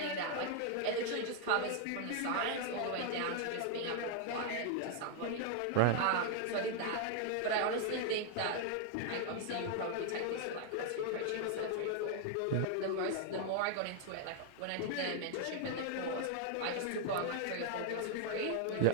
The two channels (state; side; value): different; both; correlation 0.00